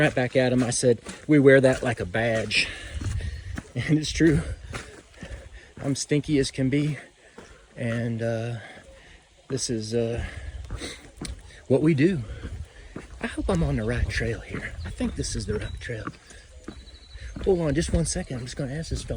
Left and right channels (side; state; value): both; identical; correlation 1.00